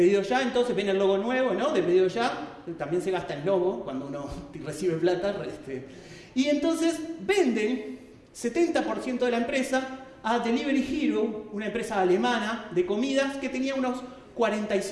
Ya, entonces, ven el logo nuevo, ¿no? De Pedido Ya, también se gasta el logo cuando uno recibe plata. Y entonces venden 70% de la empresa a Delivery Hero, una empresa alemana de comidas que tenía unos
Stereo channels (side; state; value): both; identical; correlation 1.00